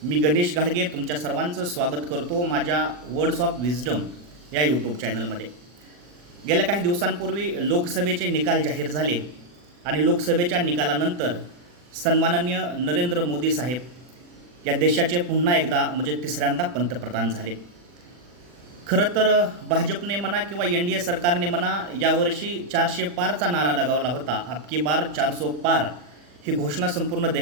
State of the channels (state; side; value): late; left; 40 ms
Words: मी गणेश घाडगे तुमच्या सर्वांचं स्वागत करतो माझ्या वर्ड्स ऑफ विजडम या यूट्यूब चॅनलमध्ये. गेल्या काही दिवसांपूर्वी लोकसभेचे निकाल जाहीर झाले आणि लोकसभेच्या निकालानंतर सन्माननीय नरेंद्र मोदी साहेब या देशाचे पुन्हा एकदा म्हणजे तिसऱ्यांदा पंतप्रधान झाले. खरं तर भाजपने म्हणा किंवा NDA सरकारने म्हणा यावर्षी 400 पारचा नारा लगावला होता. अबकी बार 400 पार ही घोषणा संपूर्ण